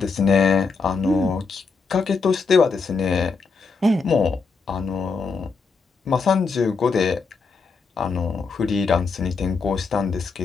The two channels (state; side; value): quieter; right; 4.7 dB